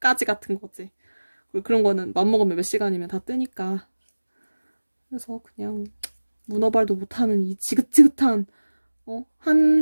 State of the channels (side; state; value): both; inverted; correlation -1.00